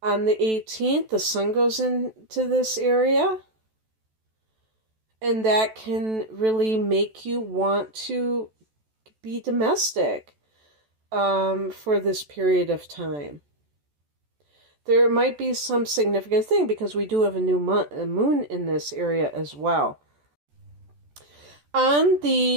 On the 18th, the sun goes into this area, and that can really make you want to be domestic for this period of time. There might be some significant thing because we do have a new moon in this area as well. On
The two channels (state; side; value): late; left; 14 ms